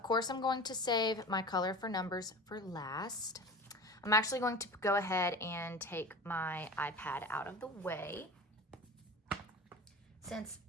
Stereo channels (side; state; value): both; normal; correlation 0.34